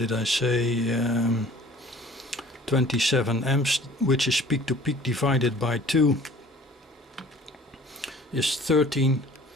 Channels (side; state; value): both; normal; correlation 0.49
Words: I say, 27 amps, which is peak to peak divided by 2 is 13,